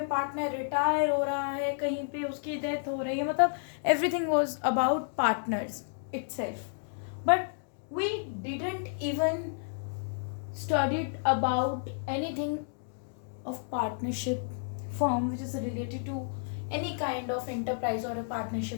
पार्टनर रिटायर हो रहा है, कहीं पे उसकी डेथ हो रही है, मतलब everything was about partners itself. But we didn't even studied about anything of partnership firm which is related to any kind of enterprise or a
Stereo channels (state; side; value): silent; right; digital silence